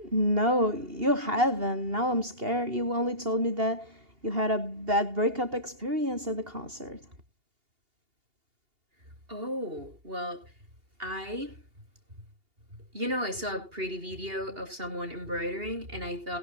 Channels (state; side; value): late; left; 2.8 ms